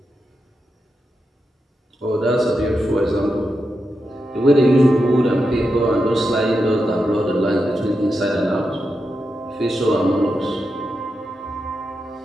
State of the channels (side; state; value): both; normal; correlation 0.87